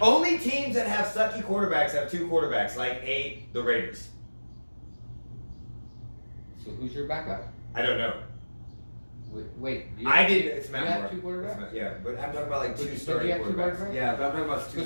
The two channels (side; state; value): both; inverted; correlation -1.00